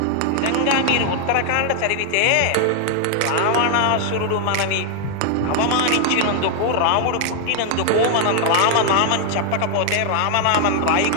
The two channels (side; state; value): both; different; correlation 0.00